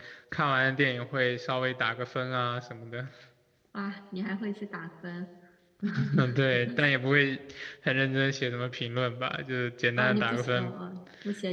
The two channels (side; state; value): both; identical; correlation 1.00